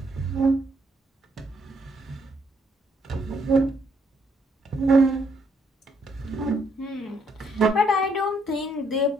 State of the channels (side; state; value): both; normal; correlation 0.71